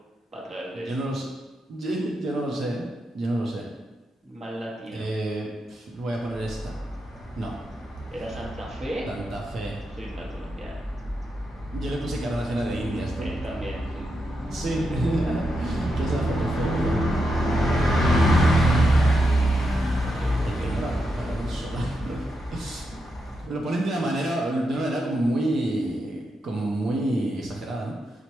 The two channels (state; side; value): normal; both; correlation 0.85